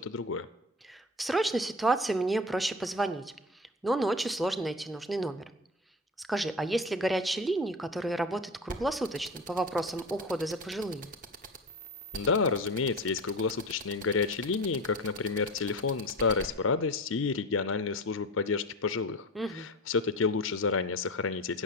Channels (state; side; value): normal; both; correlation 0.29